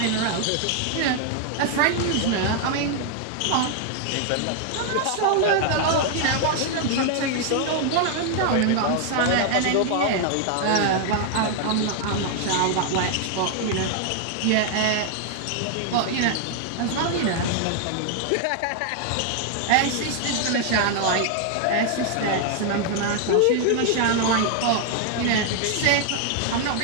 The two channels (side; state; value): both; different; correlation 0.00